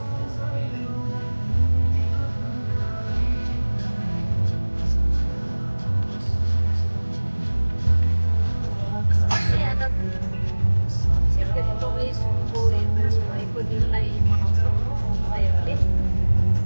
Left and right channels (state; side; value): inverted; both; correlation -1.00